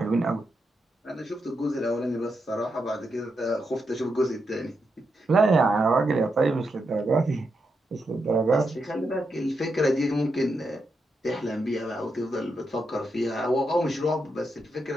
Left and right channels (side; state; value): both; normal; correlation 0.84